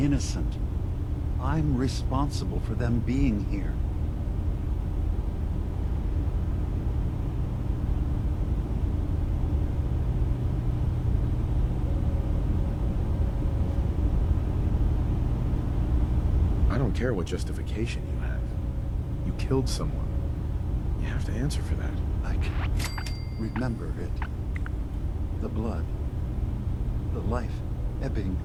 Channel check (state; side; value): identical; both; correlation 1.00